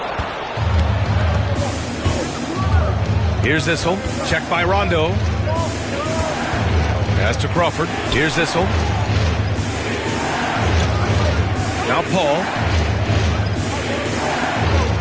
Here's Issel. Checked by Rondo. Pass to Crawford. Here's Issel. Now Paul.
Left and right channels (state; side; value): identical; both; correlation 1.00